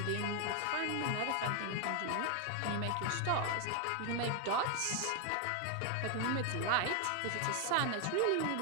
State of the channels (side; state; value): both; different; correlation 0.01